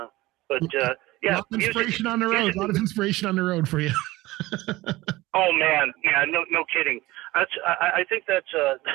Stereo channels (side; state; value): left; quieter; 18.9 dB